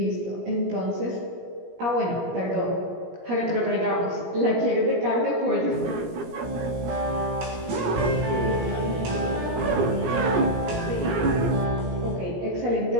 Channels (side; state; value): left; late; 17 ms